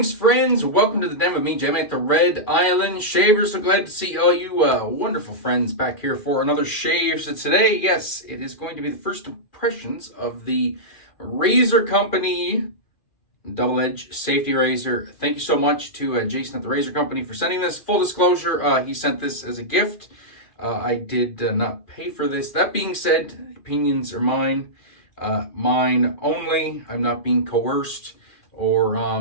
friends. Welcome to the den with me, Jim at the Red Island Shaver. So glad to see all you wonderful friends back here for another shave. So today, yes, it is going to be the first impressions of the Razor Company double-edge safety razor. Thank you so much to Jason at the Razor Company for sending this. Full disclosure, he sent this as a gift. I did not pay for this. That being said, opinions are mine. Mine only. I'm not being coerced or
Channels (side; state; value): right; late; 2.4 ms